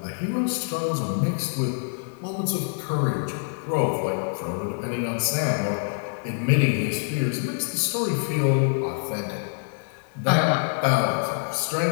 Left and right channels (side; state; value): right; silent; digital silence